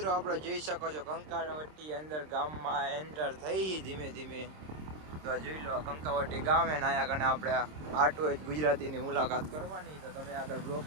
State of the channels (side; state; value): left; late; 26 ms